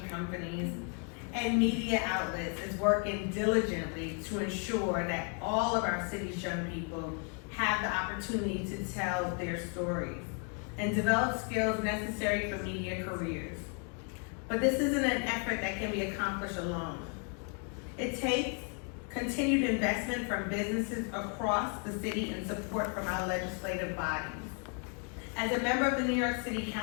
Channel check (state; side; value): quieter; right; 40.0 dB